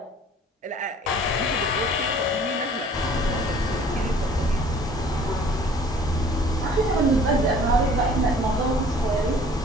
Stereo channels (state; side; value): normal; both; correlation 0.52